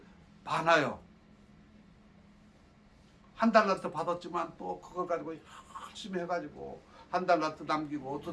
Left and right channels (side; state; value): both; identical; correlation 1.00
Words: 많아요. 1달란트 받았지만 또 그걸 가지고 열심히 해가지고 1달란트 남기고